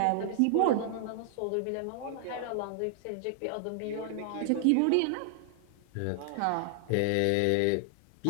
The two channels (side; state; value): both; different; correlation 0.00